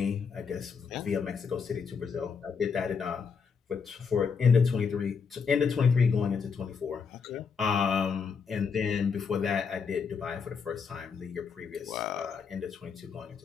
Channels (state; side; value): quieter; right; 5.9 dB